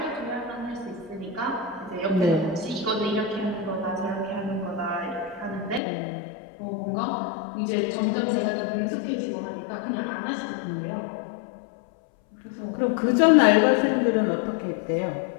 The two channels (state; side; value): drops out; right; at 5.8 s